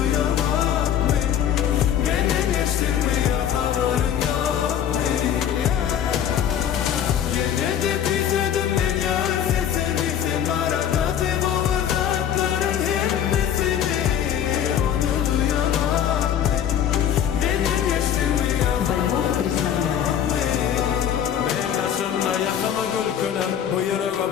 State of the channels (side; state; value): right; quieter; 9.7 dB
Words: ben. Benden geçtin mi ya haberin yok mu? Yine de küsüdüm ben ya sesini. Sen arada kaybolmaz atların hemmesini. Onu duyamam ben. Benden geçtin mi ya haberin yok mu? Ben karşımda yakama gülkülüm. Bu yüreğe